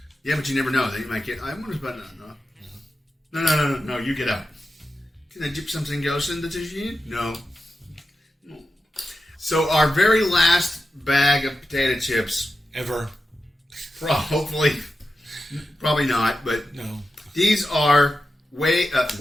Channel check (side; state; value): both; normal; correlation 0.91